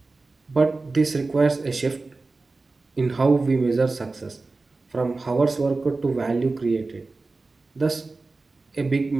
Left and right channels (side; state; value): left; quieter; 3.6 dB